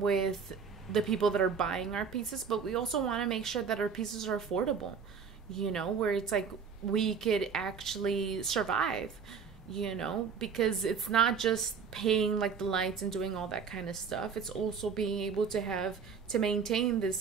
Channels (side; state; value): left; quieter; 6.1 dB